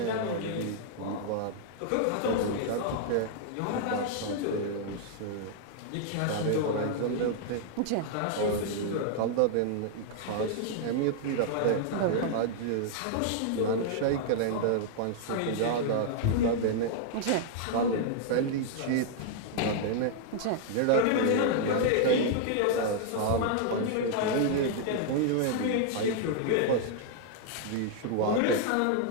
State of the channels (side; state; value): both; different; correlation -0.01